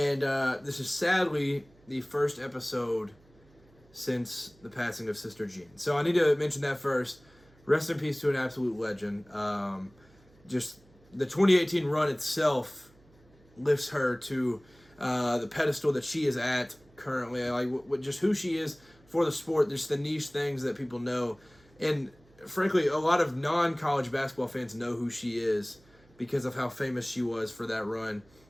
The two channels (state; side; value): noise; right; hum, 29 dB below the sound